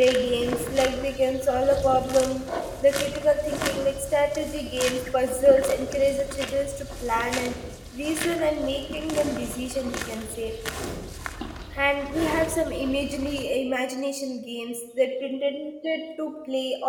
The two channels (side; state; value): both; identical; correlation 1.00